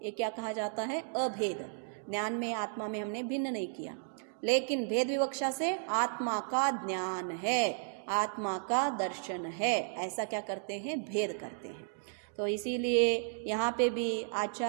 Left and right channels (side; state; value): left; silent; digital silence